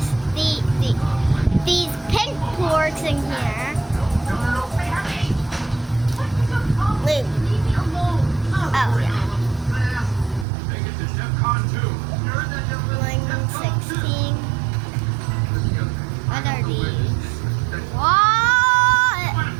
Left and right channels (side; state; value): left; drops out; at 10.5 s